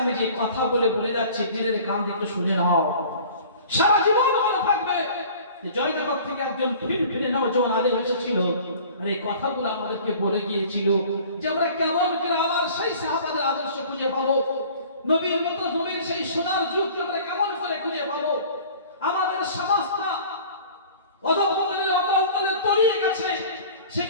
যে কথা বলে যাচ্ছি, দিনের কান থেকে শুনে নাও, সারা জীবন মনে থাকবে। জয়নগর থেকে একজন ফিরে নওজোয়ান আলেম এসেছিল, আর এই কথাগুলো আমাদেরকে বলে গিয়েছিল যে আমরা কেমন করে আবার সেই সাহাবাদের আদর্শ খুঁজে পাবো, নবীর মতো নবীর সেই সোনার যুগকে আমরা কেমন করে খুঁজে পাবো। আমাদের সমাজটা অধঃপতনের অবলম্বনে তলিয়ে গেছে,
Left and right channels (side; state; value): both; inverted; correlation -0.46